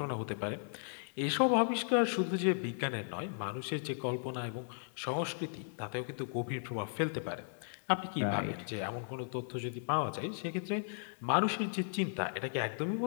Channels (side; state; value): right; silent; 54 dB below the other